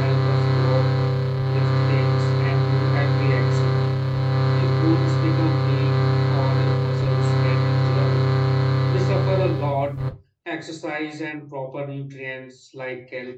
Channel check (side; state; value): both; identical; correlation 1.00